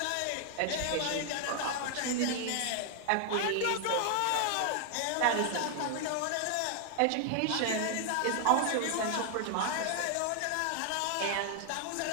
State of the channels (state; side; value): different; both; correlation 0.00